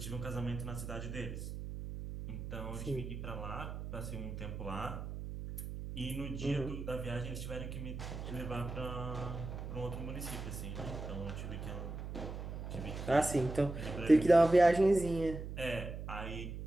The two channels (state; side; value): noise; right; hum, 7 dB below the sound